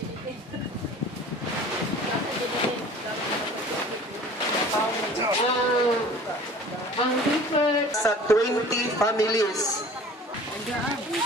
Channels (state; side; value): normal; both; correlation 0.45